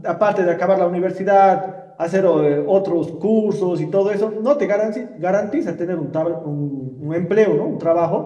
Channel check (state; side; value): identical; both; correlation 1.00